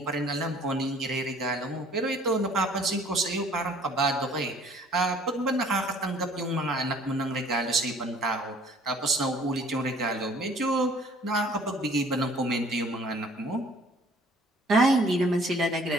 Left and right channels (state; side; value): normal; both; correlation 0.55